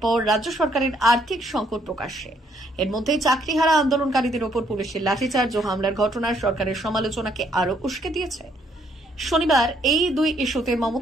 পর রাজ্য সরকারের আর্থিক সংকট প্রকাশ্যে। এর মধ্যে চাকরিহারা আন্দোলনকারীদের ওপর পুলিশের লাঠিচার্জ ও হামলার ঘটনার সরকারের সমালোচনাকে আরও উস্কে দিয়েছে। শনিবার এই দুই ইস্যুতে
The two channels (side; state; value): both; normal; correlation 0.69